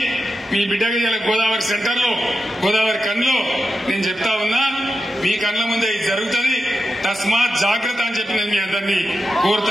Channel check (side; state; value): both; normal; correlation 0.89